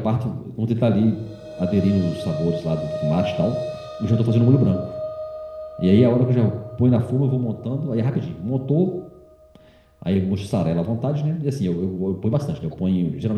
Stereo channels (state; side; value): identical; both; correlation 1.00